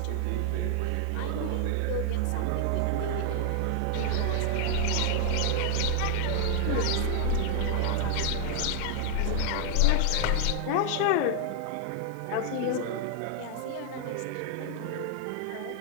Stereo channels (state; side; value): different; both; correlation 0.00